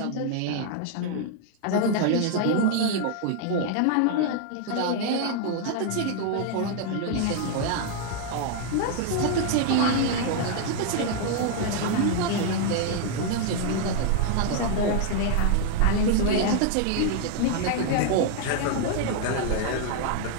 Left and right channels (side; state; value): both; different; correlation 0.00